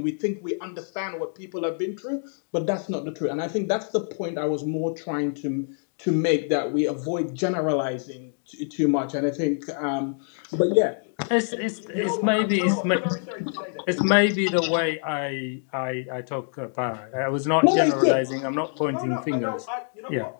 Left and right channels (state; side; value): silent; right; 61 dB below the other